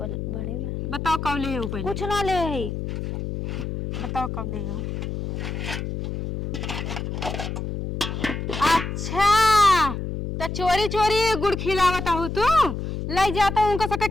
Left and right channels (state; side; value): noise; left; hum, 4 dB below the sound